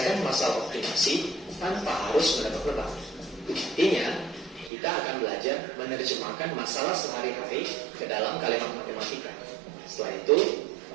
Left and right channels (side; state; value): left; drops out; at 4.7 s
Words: masalah optimasi tanpa harus menebak-nebak. Artinya, kita akan belajar menerjemahkan masalah sehari-hari ke dalam kalimat matematika. Setelah itu,